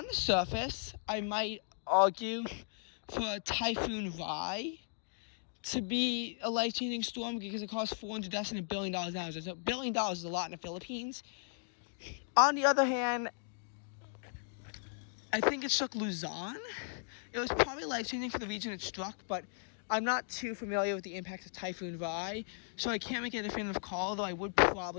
the surface, I might argue for Typhoon Rai to be a life-changing storm because it caused 400 deaths and $1 billion damage. $1 billion is a lot in the Philippines. On the other hand, I think it struck Luzon. It was probably life-changing for the region it struck, but I'm not too familiar with the impact of Typhoon Rai, so I can't make a definitive call, though I would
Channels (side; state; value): right; silent; digital silence